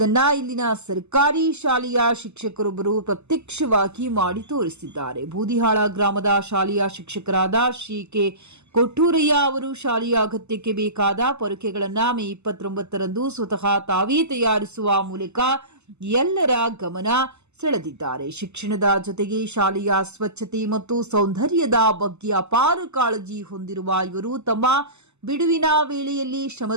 ಇಲ್ಲಿನ ಸರ್ಕಾರಿ ಶಾಲೆಯ ಶಿಕ್ಷಕರೊಬ್ಬರು ಪ್ರತ್ಯಕ್ಷವಾಗಿ ಮಾಡಿ ತೋರಿಸಿದ್ದಾರೆ. ಬೂದಿಹಾಳ ಗ್ರಾಮದ ಶಾಲೆಯ ಶಿಕ್ಷಕರಾದ ಶ್ರೀ ಕೆ ಕೊಟ್ಟೂರಯ್ಯ ಅವರು ಶಾಲೆಯ ಅಗತ್ಯಕ್ಕೆ ಬೇಕಾದ ಪೊರಕೆಗಳನ್ನು ಮೇ 29ರಂದು ಸ್ವತಃ ತಾವೇ ತಯಾರಿಸುವ ಮೂಲಕ ಎಲ್ಲರ ಗಮನ ಸೆಳೆದಿದ್ದಾರೆ. ಶಿಕ್ಷಣದ ಜೊತೆಗೆ ಶಾಲೆಯ ಸ್ವಚ್ಛತೆ ಮತ್ತು ಸೌಂದರ್ಯದ ಬಗ್ಗೆ ಅಪಾರ ಕಾಳಜಿ ಹೊಂದಿರುವ ಇವರು ತಮ್ಮ ಬಿಡುವಿನ ವೇಳೆಯಲ್ಲಿ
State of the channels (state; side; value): late; left; 0.82 ms